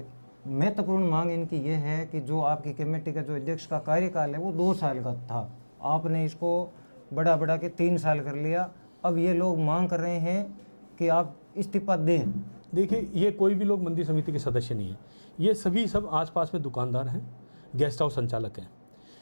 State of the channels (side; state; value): both; inverted; correlation -1.00